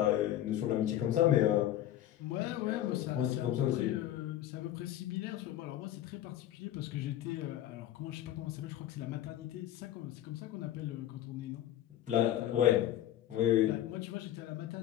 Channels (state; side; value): quieter; right; 12.6 dB